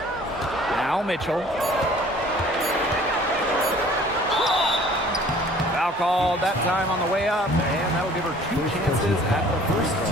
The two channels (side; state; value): both; normal; correlation 0.52